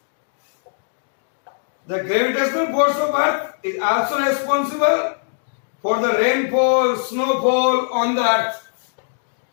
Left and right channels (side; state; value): right; silent; digital silence